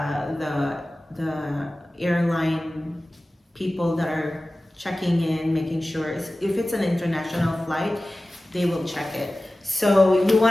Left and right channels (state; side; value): normal; both; correlation 0.96